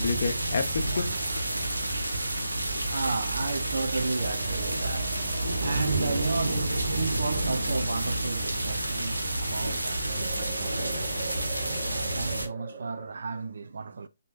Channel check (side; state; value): both; inverted; correlation -0.86